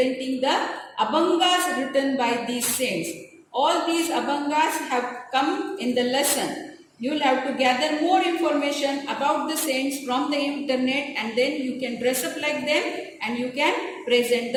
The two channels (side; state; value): both; identical; correlation 1.00